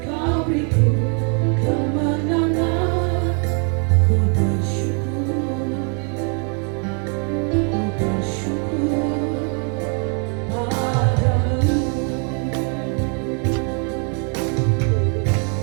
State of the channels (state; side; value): quieter; left; 39.2 dB